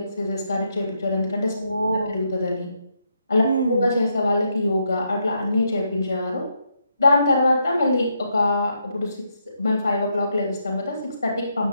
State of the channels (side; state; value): both; inverted; correlation -0.79